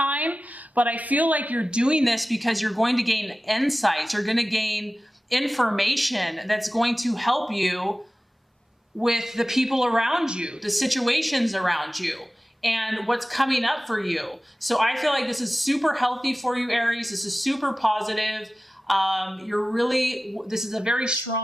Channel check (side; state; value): both; normal; correlation 0.96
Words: but I feel like you're doing this because you're going to gain insights. You're going to gain information that's going to help you with the people around you, the situations around you, and what's coming up for you. So I feel like this is super healthy for you, Aries. This is super positive. This is a very